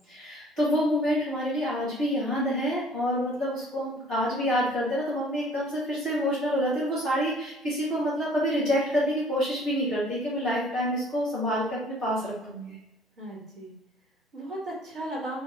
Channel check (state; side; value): normal; both; correlation 0.54